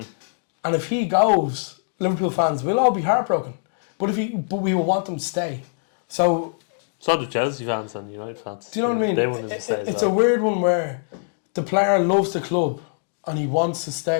if he goes, Liverpool fans will all be heartbroken. But we will want them to stay. So do Chelsea fans and United fans. Do you know what I mean? They want him to stay. It's a weird one where the player loves the club and he wants to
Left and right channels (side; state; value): right; silent; digital silence